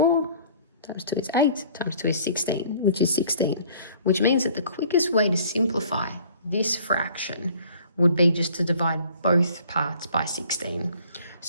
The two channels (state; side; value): inverted; both; correlation -0.54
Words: times 2 is 8, times 2 is 16, which is 16, which means that the quickest way to simplify this fraction would be just to divide both parts by 16.